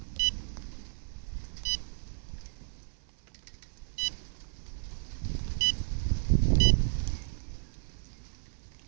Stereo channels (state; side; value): silent; left; 56 dB below the other